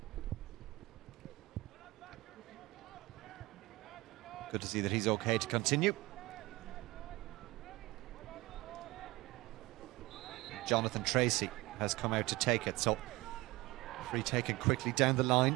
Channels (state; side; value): quieter; left; 21.1 dB